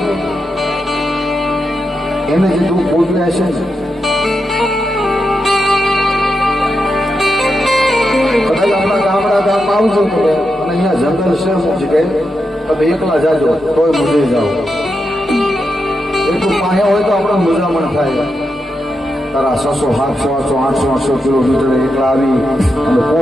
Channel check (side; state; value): both; normal; correlation 0.86